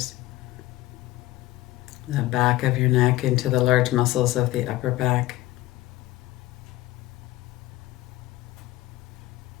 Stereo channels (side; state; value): right; quieter; 17.2 dB